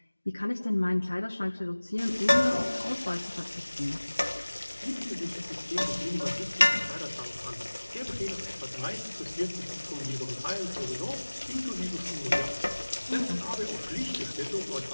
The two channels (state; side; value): inverted; both; correlation -1.00